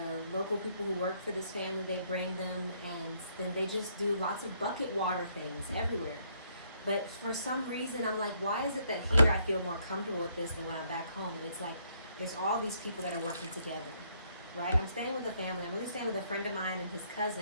local people who work for this family, they bring them, and then they just do lots of bucket water things everywhere. But for some reason, I'm like, why is it that here I feel more comfortable with this than when I'm back home? And it's like, there's all these people that are working together, right? I'm staying with a family. I'm really staying with a friend of mine and his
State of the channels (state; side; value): inverted; both; correlation -0.70